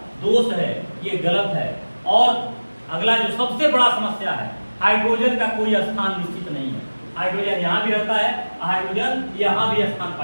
दोष है, ये गलत है। और अगला जो सबसे बड़ा समस्या है, हाइड्रोजन का कोई स्थान निश्चित नहीं है। हाइड्रोजन यहाँ भी रहता है, हाइड्रोजन यहाँ भी स्थान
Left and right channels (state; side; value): inverted; both; correlation -1.00